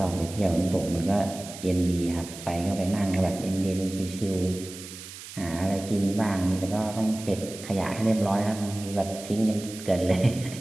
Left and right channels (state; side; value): noise; right; hiss, 13 dB below the sound